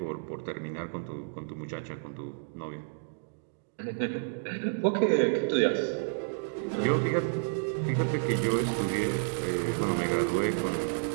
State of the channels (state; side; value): silent; left; digital silence